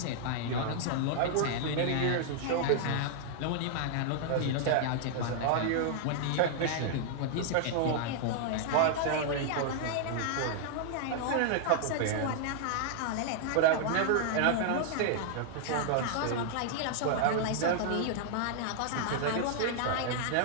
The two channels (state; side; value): different; both; correlation -0.01